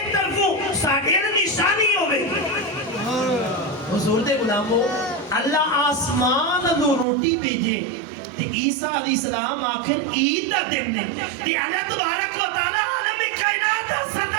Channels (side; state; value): left; drops out; at 7.1 s